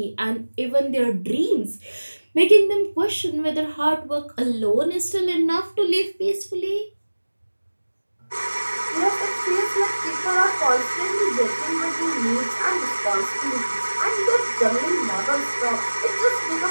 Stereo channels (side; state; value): both; inverted; correlation -1.00